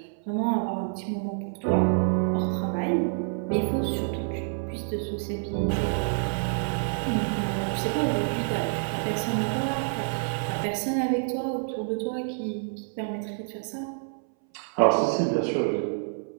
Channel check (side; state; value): left; silent; 60 dB below the other